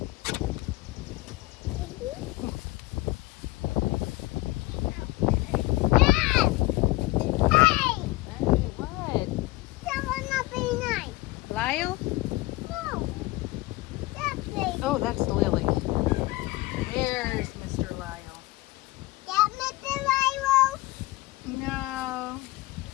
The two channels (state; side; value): quieter; right; 19.7 dB